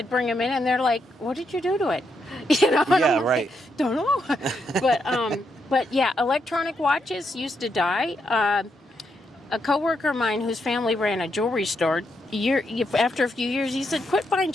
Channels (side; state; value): both; normal; correlation 0.80